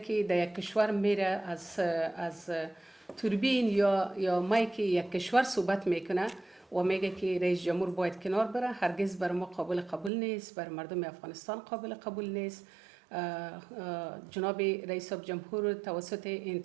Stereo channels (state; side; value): drops out; left; at 10.1 s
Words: در یک کشور میره از توربین یا مایک یک کشور صحبت میکنه و میگه که رئیس جمهور باید کنار بره، هرگز بر ما قابل نیست، بر مردم افغانستان قابل نیست. جناب رئیس جمهور توسط